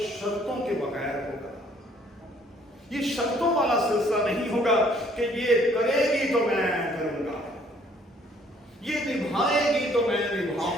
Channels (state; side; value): normal; both; correlation 0.61